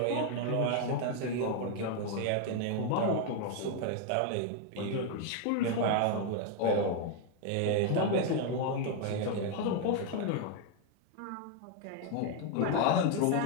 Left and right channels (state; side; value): different; both; correlation 0.01